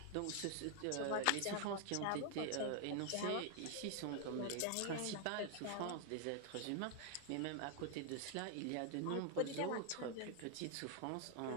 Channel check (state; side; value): different; both; correlation 0.00